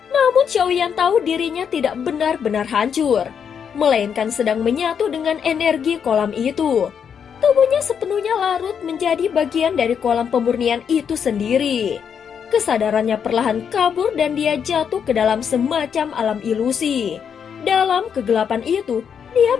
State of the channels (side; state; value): right; quieter; 7.4 dB